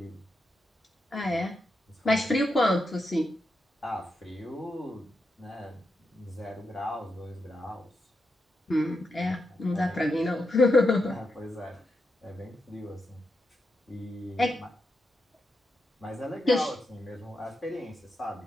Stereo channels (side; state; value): both; normal; correlation 0.85